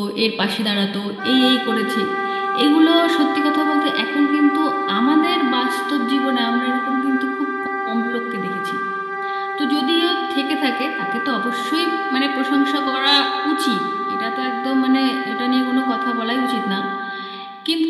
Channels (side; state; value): both; identical; correlation 1.00